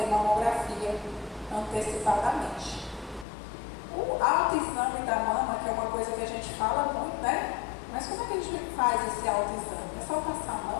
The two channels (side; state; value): right; drops out; at 3.2 s